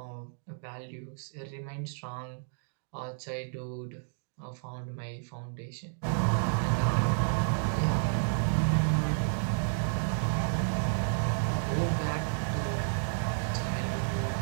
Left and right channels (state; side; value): silent; left; digital silence